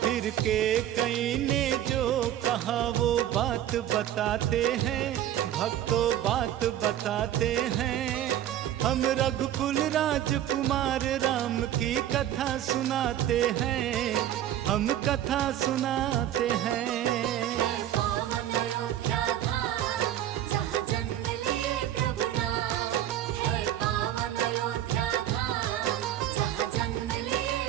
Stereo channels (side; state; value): left; quieter; 11.8 dB